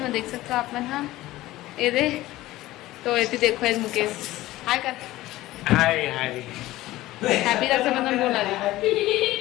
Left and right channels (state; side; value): quieter; right; 16.8 dB